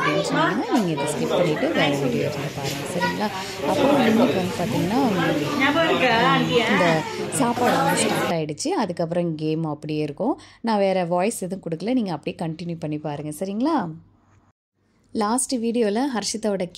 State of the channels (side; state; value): both; identical; correlation 1.00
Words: சொன்னீங்கன்னா நீங்கள் இதை ஸ்கிப் பண்ணிவிட்டு வேறு வீடியோ எடுத்து பாருங்கள், சரிங்களா? அப்புறம் இன்னைக்கு வந்து பார்த்தீங்கன்னா இந்த சாப்பாடு வந்து ஸ்டார்ட் ஆகிடுச்சு. அதுக்கப்புறம் கேம் அப்படியே இருக்கும். நான் வேறு வாய்ஸ் எதுவும் கொடுக்கல, நீங்கள் அப்படியே கண்டினியூ பண்ணி பாருங்கள், சரிங்களா? லாஸ்ட் வீடியோவில் ஹர்ஷிதாவோட